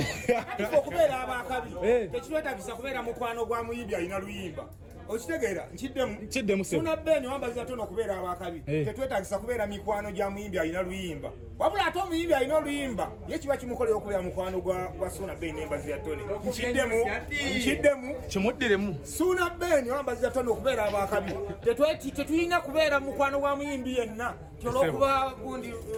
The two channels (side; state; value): both; identical; correlation 1.00